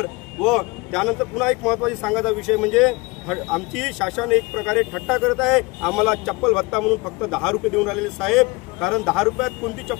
व त्यानंतर पुन्हा एक महत्त्वाची सांगायचा विषय म्हणजे आमची शासन एक प्रकारे थट्टा करत आहे। आम्हाला चप्पल भत्ता म्हणून फक्त 10 रुपये देऊन राहिलेले साहेब, कारण 10 रुपयात कोणती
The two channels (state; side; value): quieter; right; 24.9 dB